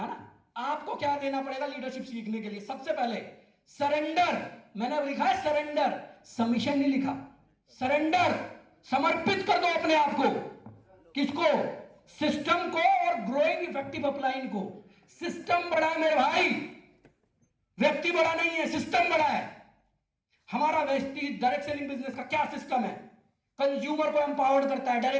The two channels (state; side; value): identical; both; correlation 1.00